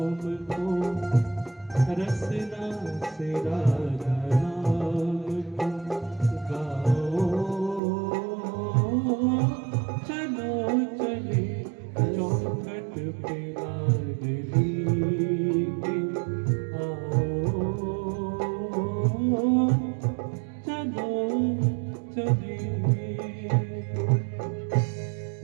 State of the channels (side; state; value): left; drops out; at 7.8 s